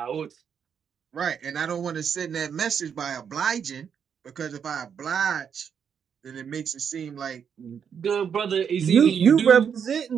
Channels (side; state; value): left; quieter; 7.4 dB